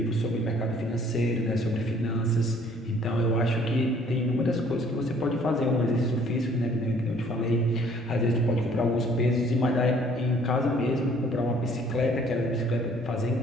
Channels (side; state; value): both; normal; correlation 0.58